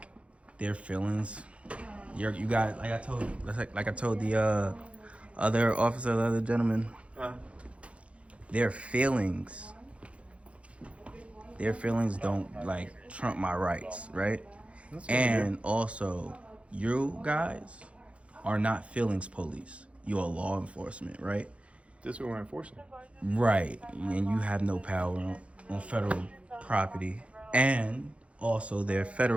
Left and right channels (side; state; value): left; late; 0.062 ms